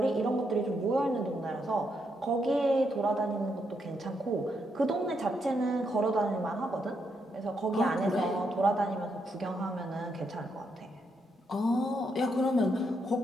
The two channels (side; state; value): both; normal; correlation 0.79